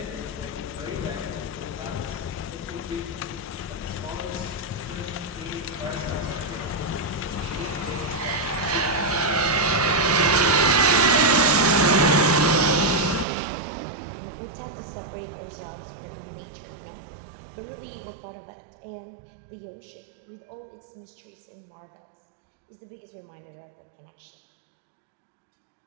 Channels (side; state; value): left; drops out; at 13.2 s